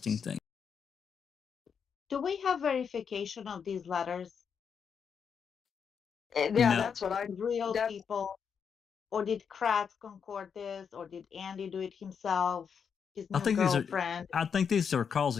thing. Do we have verification of these letters? Yeah, No. that's what I. Real people? Or did Kratz concord this? Or did Andy do it himself? His new girlfriend? I think these are calls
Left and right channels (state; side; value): quieter; right; 6.8 dB